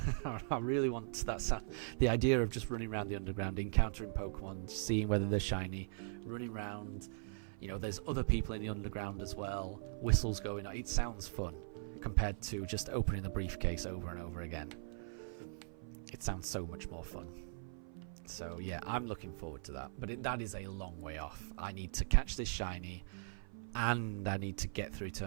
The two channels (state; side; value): silent; left; 51 dB below the other